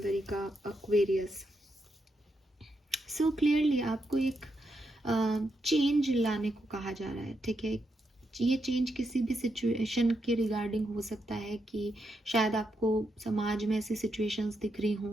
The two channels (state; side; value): normal; both; correlation 0.82